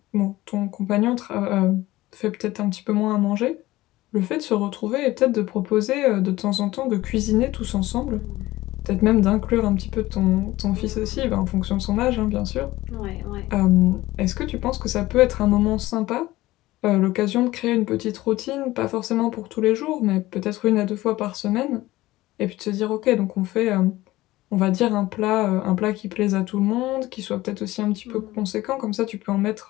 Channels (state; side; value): quieter; right; 17.6 dB